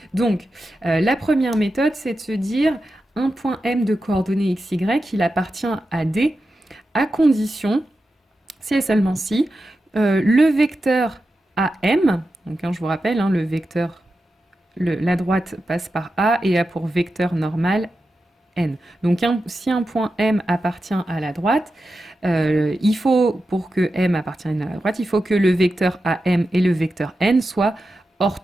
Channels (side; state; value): both; normal; correlation 0.90